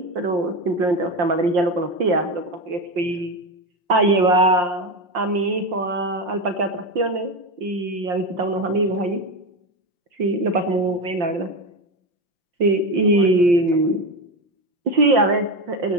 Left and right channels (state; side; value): late; left; 5.7 ms